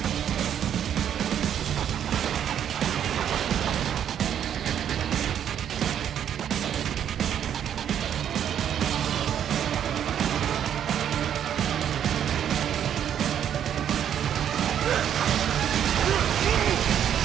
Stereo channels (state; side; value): quieter; left; 9.5 dB